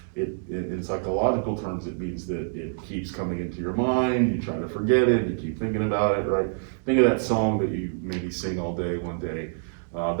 it. In psychological terms, it means that it keeps coming into your mind, you try to forget it, you keep thinking about it, right? Think of that song that you maybe sing all day, one day.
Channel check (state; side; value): silent; left; digital silence